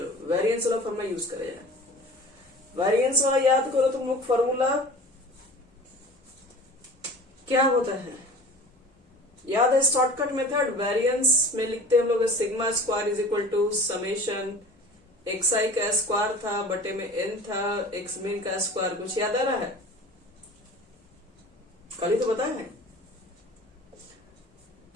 वेरिएंस वाला फॉर्मूला यूज करें जाए। वेरिएंस वाला याद करो तुम लोग। फॉर्मूला क्या होता है? याद है शॉर्टकट मेथड? वेरिएंस में लिखते हैं हम लोग sigma square is equal to summation xi का स्क्वायर था बटे में n था x मीन का स्क्वायर। कुछ याद आ रहा है? कल ही तो बताया है।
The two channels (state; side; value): normal; both; correlation 0.40